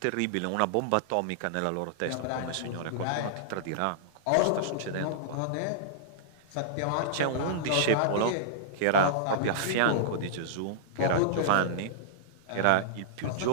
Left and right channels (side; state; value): both; different; correlation -0.02